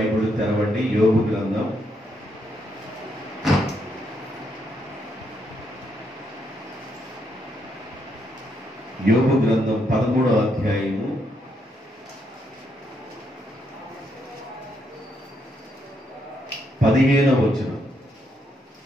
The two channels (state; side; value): normal; both; correlation 0.77